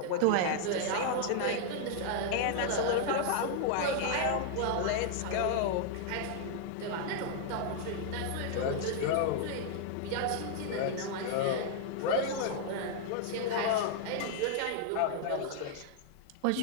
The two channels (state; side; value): different; both; correlation 0.00